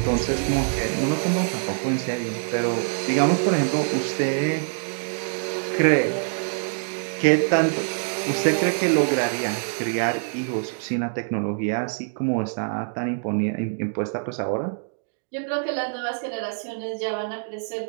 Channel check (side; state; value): left; silent; digital silence